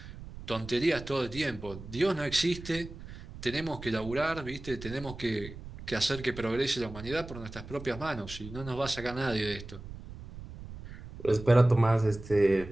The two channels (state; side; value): noise; right; rumble, 13 dB below the sound